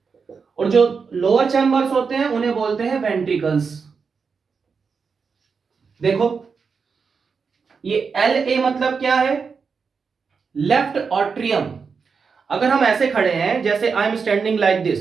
और जो लोअर चैम्बर्स होते हैं उन्हें बोलते हैं वेंट्रिकल्स। देखो, ये LA मतलब क्या है? Left atrium. अगर हम ऐसे खड़े हैं, जैसे I am standing like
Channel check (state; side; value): quieter; left; 5.4 dB